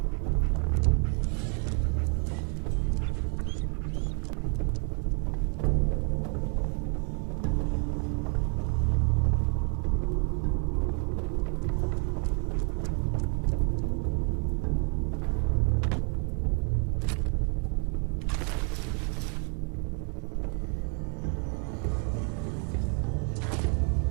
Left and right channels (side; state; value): left; quieter; 37.6 dB